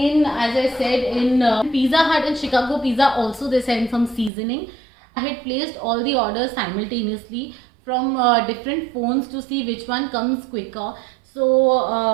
as I said, in Pizza Hut and Chicago pizza also they send some seasoning. I had placed all the orders simultaneously from different phones to see which one comes quicker. So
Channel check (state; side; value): drops out; left; at 4.3 s